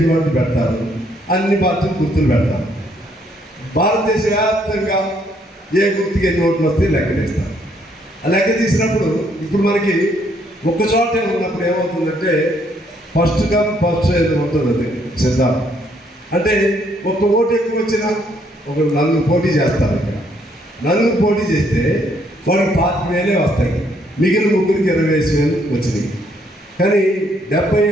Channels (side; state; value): both; normal; correlation 0.69